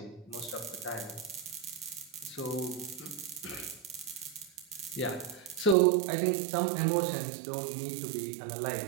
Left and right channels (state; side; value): drops out; left; at 5.8 s